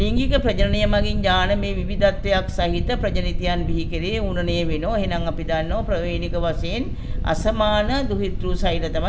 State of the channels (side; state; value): both; identical; correlation 1.00